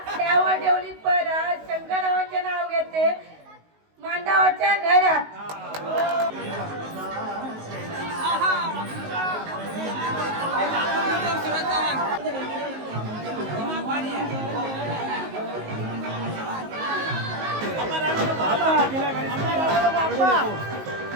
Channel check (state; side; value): late; left; 19 ms